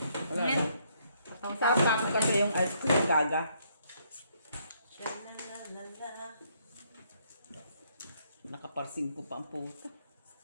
Wala Ayan. lang. Sapa ko kasi yung ice cream gaga. Shalalala. Nakaparsing ko pa ang puta.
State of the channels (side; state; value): both; inverted; correlation -0.71